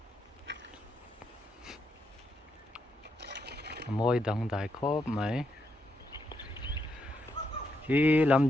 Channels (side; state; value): both; normal; correlation 0.80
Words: moi dang dai khop mai hi lam